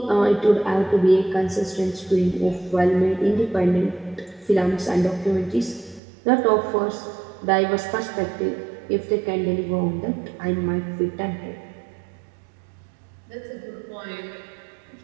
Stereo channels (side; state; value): left; drops out; at 6.0 s